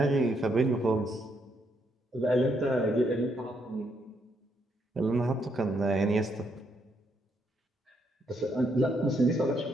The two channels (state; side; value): normal; both; correlation 0.76